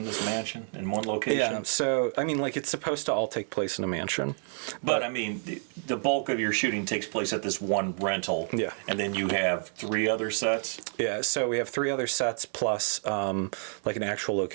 this mansion, in one location? Yeah, so, it's supposed to all take place in a mansion. But the bulk of your shooting takes place at this one rental. Yeah. And then you have 3 other sets? Yeah, so we have 3 other sets plus, an actual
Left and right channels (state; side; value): silent; left; 57 dB below the other